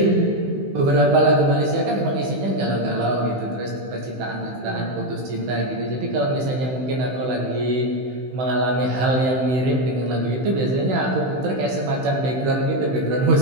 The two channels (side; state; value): left; late; 16 ms